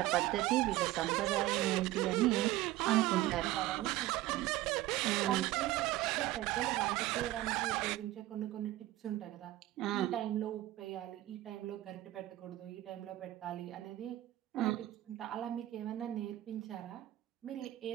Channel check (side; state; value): left; quieter; 15.9 dB